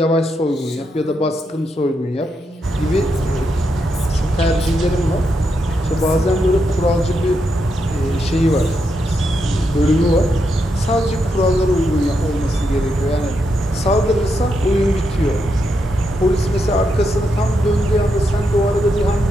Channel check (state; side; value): normal; both; correlation 0.82